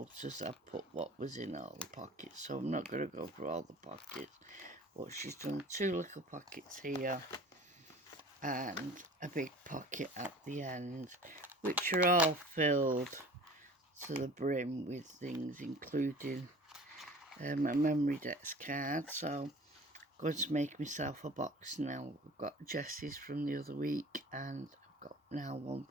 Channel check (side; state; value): both; normal; correlation 0.43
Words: I've put what was in all the pockets, so I'm not going to go through all the pockets, but she's done two little pockets here and a big pocket at the end, which are all filled to the brim with things, including a memory dex card. So I'm going to make myself a box now. I've got Jessie's from the other week and I've got now one